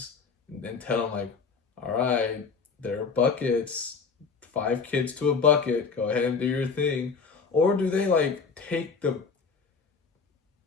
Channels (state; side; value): quieter; right; 5.2 dB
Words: and tell them like, all right, there are buckets, 5 kids to a bucket, go ahead and do your thing, or do they like take the